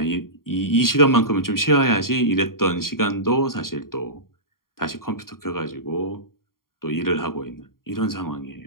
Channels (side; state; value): right; late; 0.92 ms